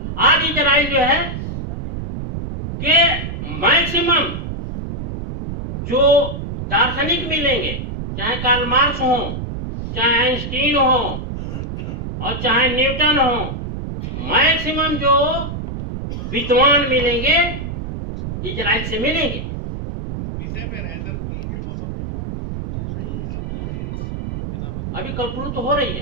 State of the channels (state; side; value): noise; right; rumble, 6 dB below the sound